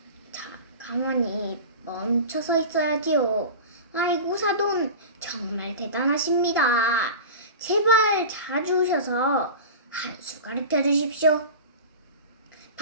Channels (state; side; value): inverted; both; correlation -0.32